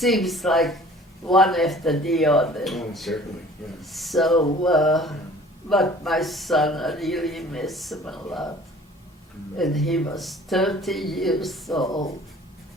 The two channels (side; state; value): both; normal; correlation 0.49